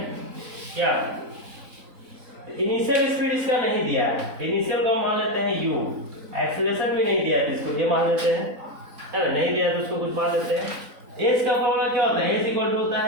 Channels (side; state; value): left; late; 3.9 ms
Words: क्या? इनिशियल स्पीड इसका नहीं दिया है। इनिशियल को मान लेते हैं u, एक्सेलरेशन भी नहीं दिया है, इसको ये मान लेते हैं, है ना? नहीं दिया है तो उसको कुछ मान लेते हैं। एस का फॉर्मूला क्या होता है? एस इक्वल टू होता